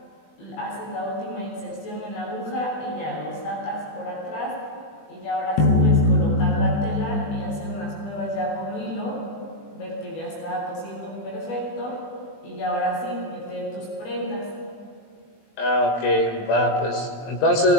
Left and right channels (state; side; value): late; right; 20 ms